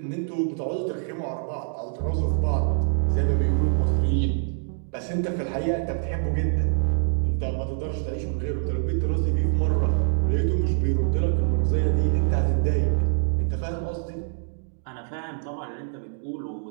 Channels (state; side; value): silent; left; digital silence